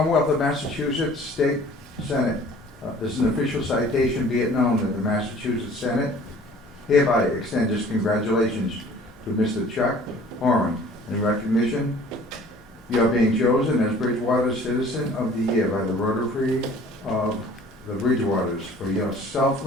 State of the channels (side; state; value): both; normal; correlation 0.50